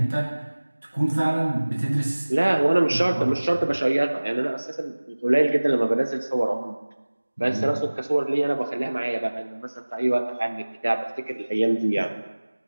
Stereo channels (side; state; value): both; inverted; correlation -1.00